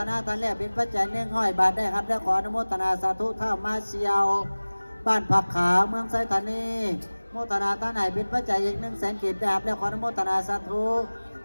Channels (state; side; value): inverted; both; correlation -1.00